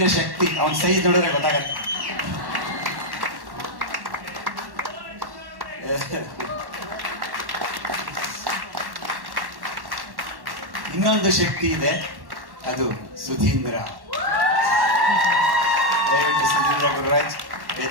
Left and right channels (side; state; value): left; late; 1.1 ms